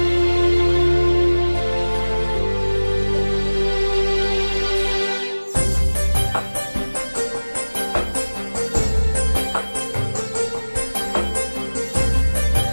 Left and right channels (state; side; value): inverted; both; correlation -1.00